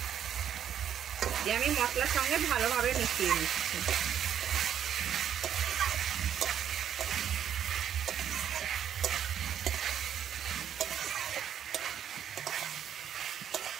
দিয়ে আমি মশলার সঙ্গে ভালোভাবে মিশিয়ে নিচ্ছি।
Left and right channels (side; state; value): left; quieter; 9.5 dB